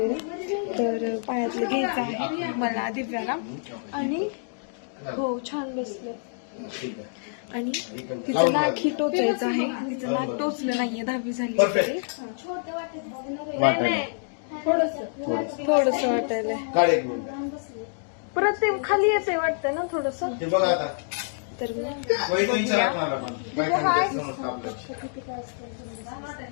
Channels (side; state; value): right; silent; digital silence